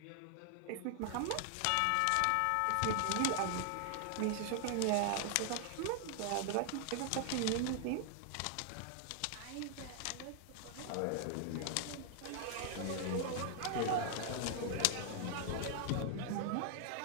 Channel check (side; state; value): both; different; correlation 0.00